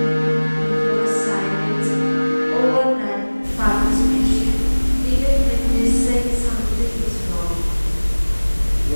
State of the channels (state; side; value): inverted; both; correlation -1.00